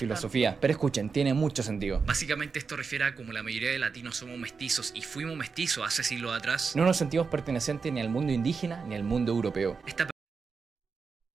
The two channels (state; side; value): quieter; left; 5.2 dB